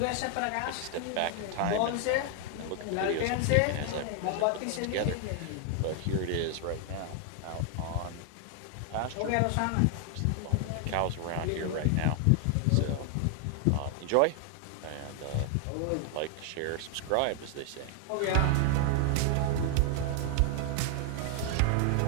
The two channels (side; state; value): both; different; correlation 0.00